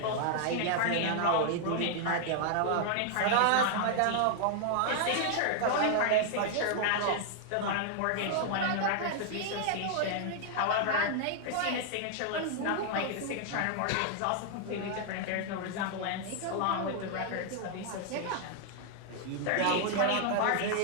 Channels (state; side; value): different; both; correlation 0.00